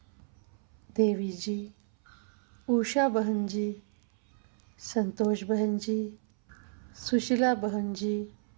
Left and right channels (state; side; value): silent; left; 57 dB below the other